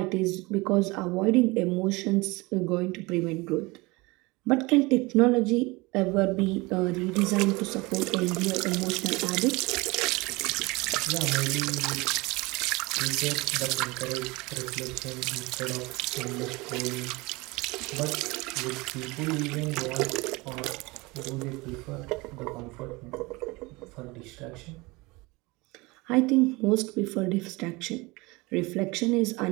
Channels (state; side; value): quieter; left; 23.8 dB